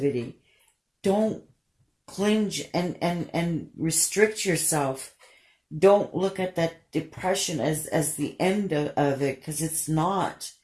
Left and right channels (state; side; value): identical; both; correlation 1.00